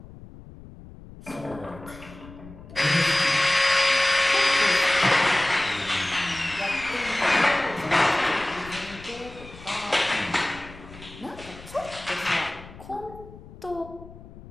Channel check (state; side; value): noise; left; rumble, 18 dB below the sound